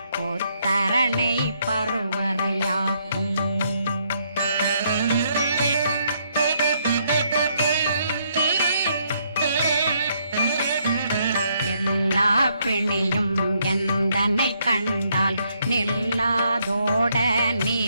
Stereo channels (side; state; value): both; inverted; correlation -0.72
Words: பருவரையாக்கும் எல்லா பிணியும் எந்தனை கண்டால் நில்லாதோட நீ